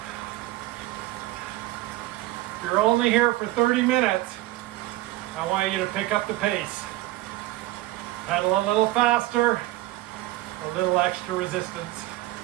If you're only here for 30 minutes, I want you to pick up the pace. Pedal a little faster, a little extra resistance.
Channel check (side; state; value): left; quieter; 17.1 dB